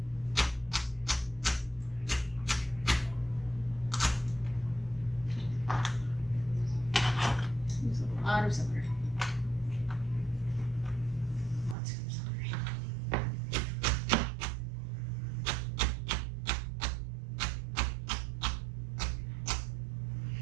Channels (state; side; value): drops out; left; at 11.8 s